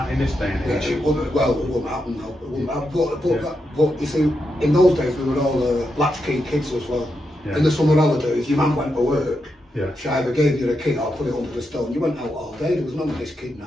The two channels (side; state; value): both; normal; correlation 0.85